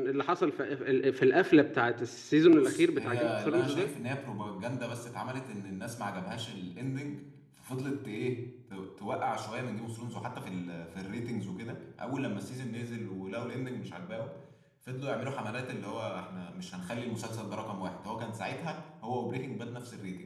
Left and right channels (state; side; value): identical; both; correlation 1.00